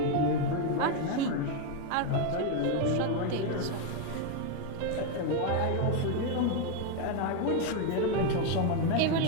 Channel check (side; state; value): both; different; correlation 0.01